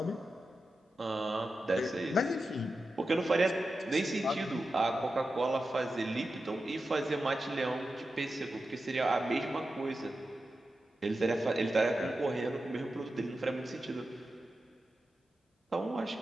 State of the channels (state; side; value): normal; both; correlation 0.91